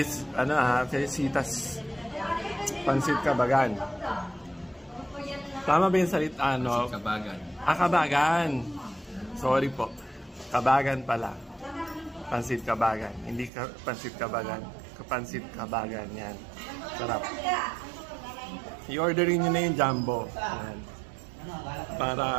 Pansit Kabagan. Tama ba yung salita? Kabagan. Kabagan. Sorry po. Kabagan pala. Pansit Kabagan. Hindi Pansit Kabagan. Pansit Kabagan. Yan. Sarap. I-orderin nyo na yung jumbo. Yan.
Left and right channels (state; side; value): drops out; left; at 13.5 s